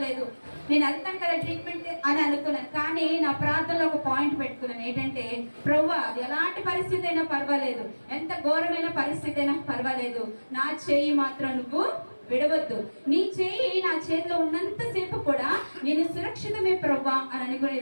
నేను వెళ్తాను కదా ట్రీట్మెంట్ అని అనుకున్నాను. కానీ నా ప్రార్థనలో ఒక పాయింట్ పెట్టుకున్నాను. ఏంటంటే ప్రభువా అది ఎలాంటి పరిస్థితి అయినా పర్వాలేదు, ఎంత ఘోరమైన పరిస్థితి అయినా పర్వాలేదు, నా చేయి మాత్రం నువ్వు విడవద్దు. నీ చేయి నా చేతిలో ఉన్నంతసేపు కూడా నేను సురక్షితమే ప్రభువా అని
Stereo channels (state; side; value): inverted; both; correlation -1.00